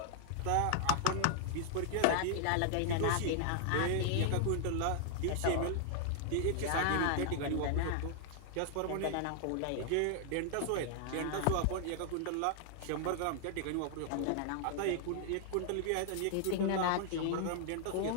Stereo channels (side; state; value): both; different; correlation 0.00